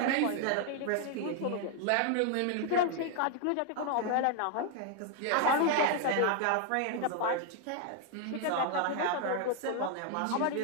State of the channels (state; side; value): different; both; correlation 0.00